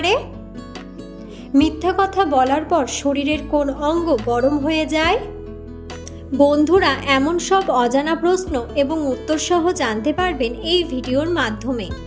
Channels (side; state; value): both; identical; correlation 1.00